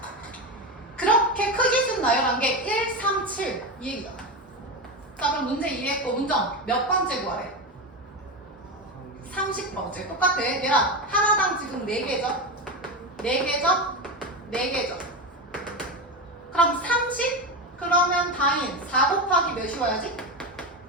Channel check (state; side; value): normal; both; correlation 0.17